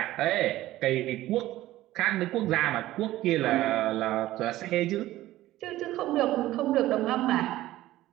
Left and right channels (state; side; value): quieter; left; 15.6 dB